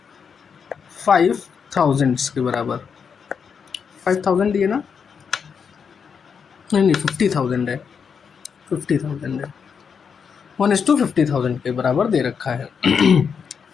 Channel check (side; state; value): right; quieter; 6.5 dB